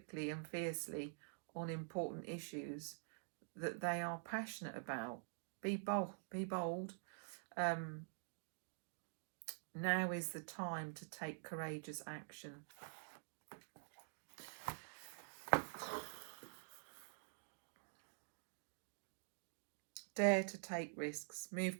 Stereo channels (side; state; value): left; silent; digital silence